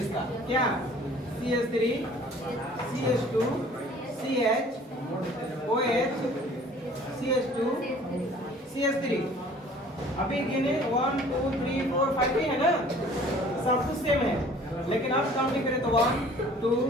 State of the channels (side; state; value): both; normal; correlation 0.51